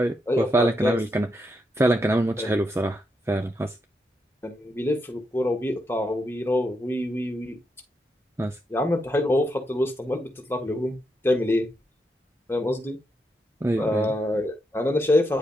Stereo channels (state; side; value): normal; both; correlation 0.82